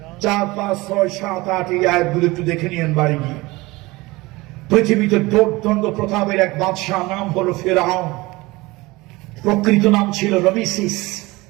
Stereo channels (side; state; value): left; quieter; 21.6 dB